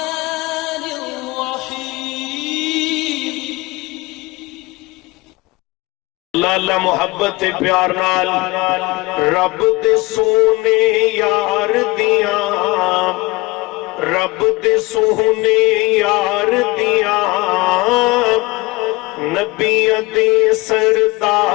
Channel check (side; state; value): right; quieter; 22.6 dB